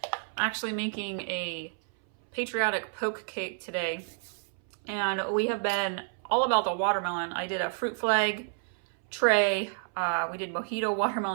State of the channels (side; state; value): left; silent; 58 dB below the other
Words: I'm actually making a patriotic poke cake today, and we have been all about the watermelon. I did a fruit flag tray. We did mojito